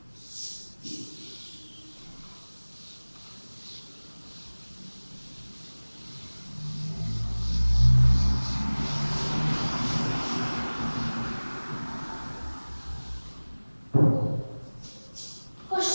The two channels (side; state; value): both; inverted; correlation -1.00